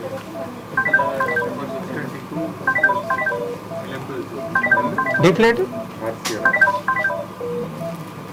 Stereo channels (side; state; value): both; identical; correlation 1.00